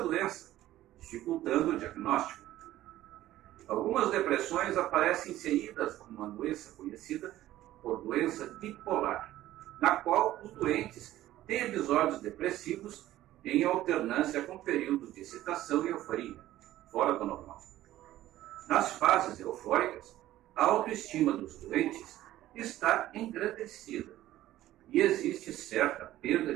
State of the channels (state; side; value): quieter; left; 14.5 dB